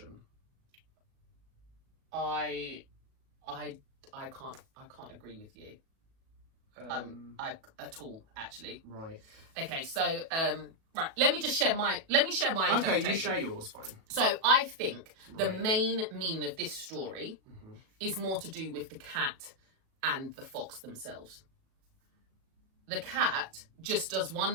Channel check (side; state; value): left; late; 37 ms